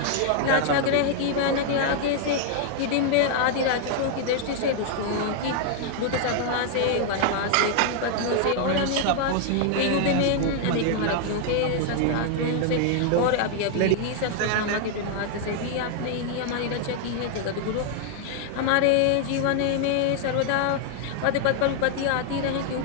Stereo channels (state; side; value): different; both; correlation 0.00